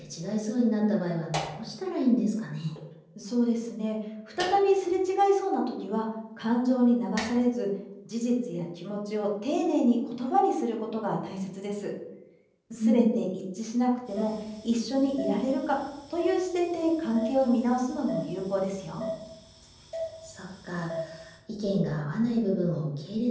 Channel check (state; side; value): identical; both; correlation 1.00